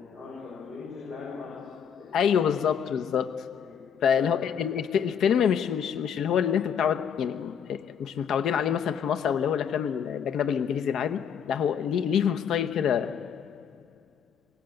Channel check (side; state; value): right; quieter; 7.8 dB